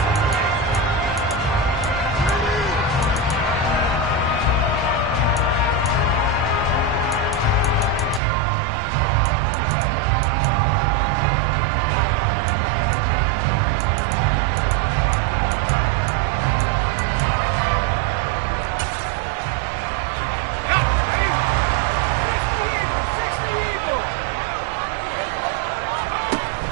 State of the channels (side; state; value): left; drops out; at 8.2 s